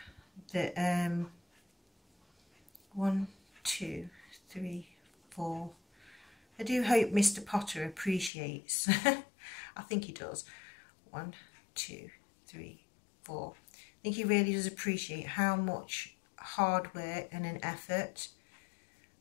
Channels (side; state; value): right; drops out; at 8.3 s